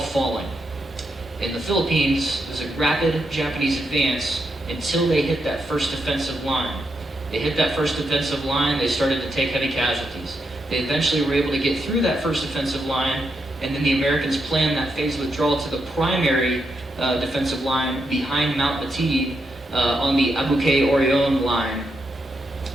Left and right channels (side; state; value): both; normal; correlation 0.82